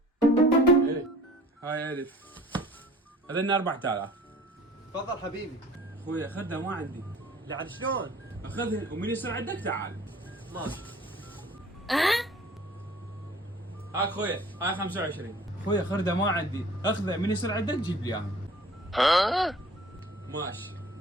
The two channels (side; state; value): both; normal; correlation 0.48